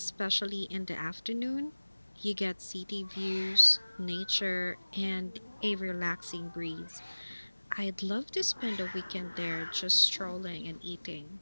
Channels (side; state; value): both; inverted; correlation -1.00